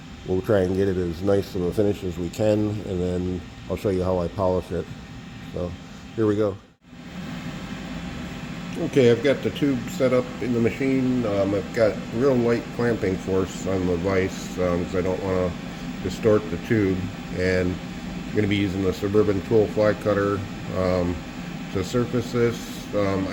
we'll try and get it as nice of a finish as we can, and then I'll show you how I polish it. So here we go. Okay, I've got the tube set up in the machine. I've got real light clamping force on the vise because I don't want to distort the tube, and I'm going to be using the Suburban tool fly cutter to surface this.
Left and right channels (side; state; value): both; identical; correlation 1.00